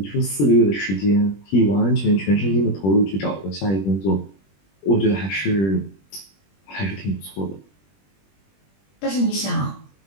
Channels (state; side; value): late; right; 21 ms